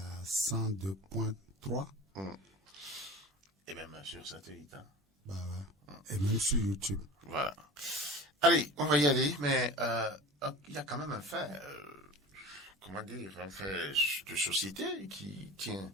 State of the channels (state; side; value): normal; both; correlation 0.35